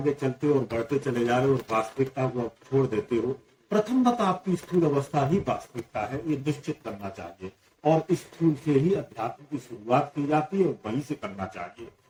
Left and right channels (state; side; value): identical; both; correlation 1.00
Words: चलते हो और बढ़ते चले जा रहे हो और वास्तविकता को आप छोड़ देते हो, प्रथम बात आपकी स्थूल अवस्था ही वास्तविकता है, ये निश्चित करना चाहिए। और इस स्थूल से ही अध्यात्म की शुरुआत की जाती है और वहीं से करना चाहिए।